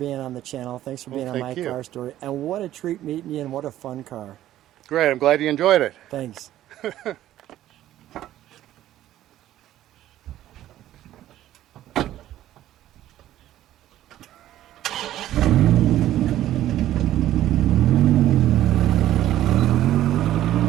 on the channel. Thanks for being on My thank you. Car Story. And what a treat meeting you, and what a fun car. Great, I'm glad you enjoyed it. Thanks.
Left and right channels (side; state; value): left; quieter; 13.2 dB